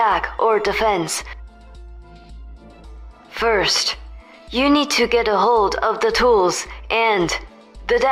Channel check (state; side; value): identical; both; correlation 1.00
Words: or defense. First, you need to get a hold of the tools and the